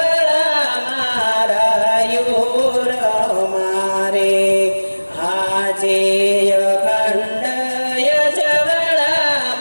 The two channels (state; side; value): inverted; both; correlation -1.00